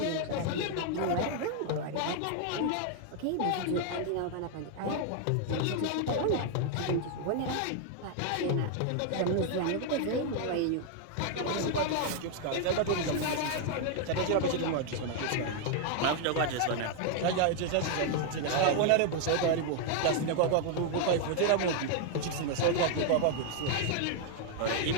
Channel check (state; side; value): different; both; correlation 0.00